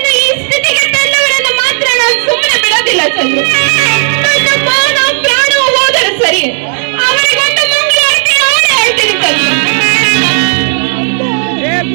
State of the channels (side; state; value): left; silent; 56 dB below the other